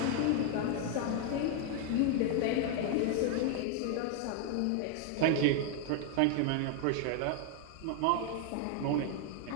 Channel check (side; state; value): both; different; correlation 0.00